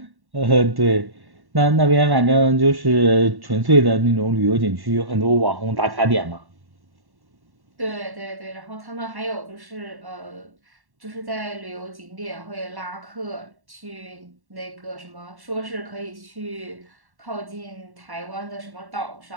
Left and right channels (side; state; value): left; late; 1.1 ms